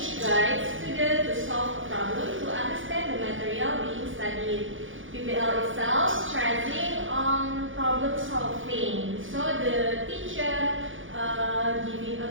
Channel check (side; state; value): left; late; 0.57 ms